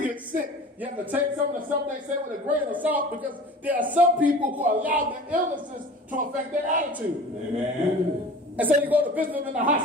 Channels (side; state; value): both; normal; correlation 0.40